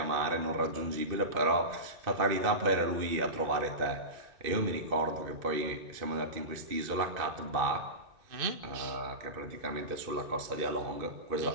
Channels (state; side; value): late; left; 2.5 ms